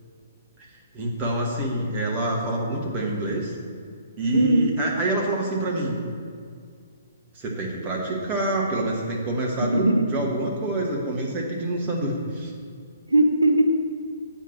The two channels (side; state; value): both; inverted; correlation -0.62